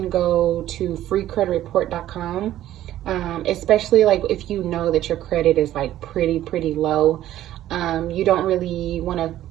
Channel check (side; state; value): left; quieter; 13.1 dB